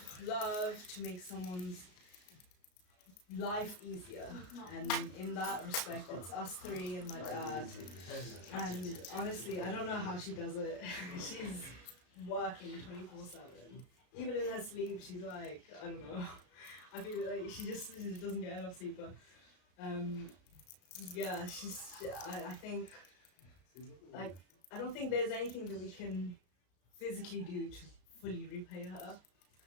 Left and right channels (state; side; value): late; right; 33 ms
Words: love, to make someone's life easier. And in that respect, it's us three and my dad. And honestly, I don't know how she does it. She's working 24/7. Even in her sleep, she's like, I don't know. I feel like she just doesn't get enough sleep. But yeah, I think, like, I don't think there's anything that we can physically do to fully repay her.